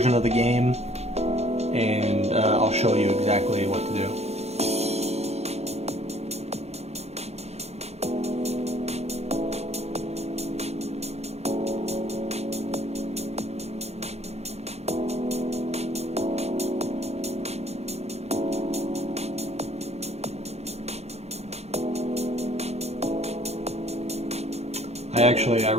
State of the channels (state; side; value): late; left; 0.31 ms